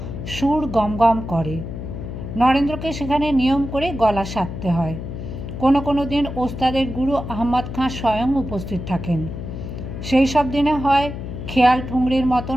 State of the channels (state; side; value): noise; left; hum, 8 dB below the sound